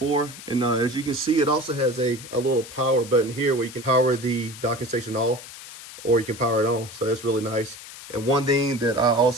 And as you can see, it also has a little power button here where you can power the docking station off or you can power it on. So that's really nice. And one thing that I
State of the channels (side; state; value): left; noise; hiss, 15 dB below the sound